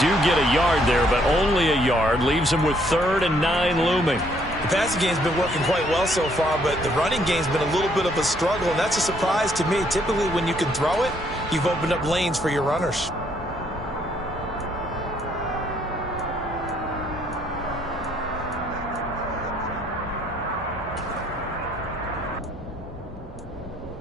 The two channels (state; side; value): normal; both; correlation 0.67